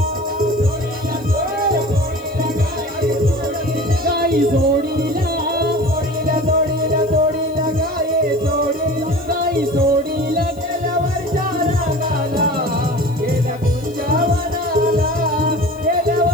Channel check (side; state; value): left; noise; hiss, 26 dB below the sound